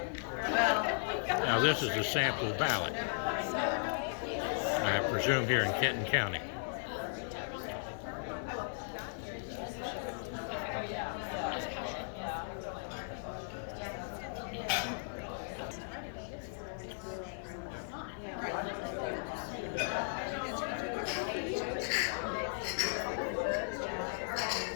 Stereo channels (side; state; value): right; silent; 53 dB below the other